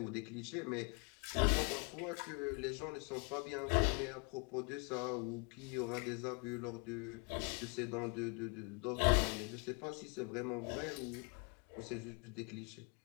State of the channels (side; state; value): right; quieter; 33.8 dB